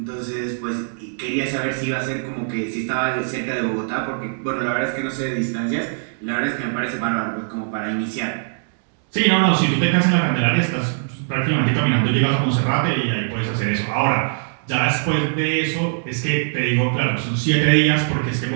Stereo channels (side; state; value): left; silent; digital silence